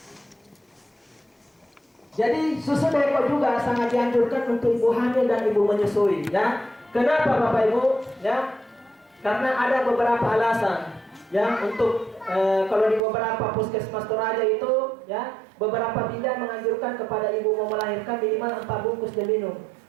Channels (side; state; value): left; drops out; at 13.0 s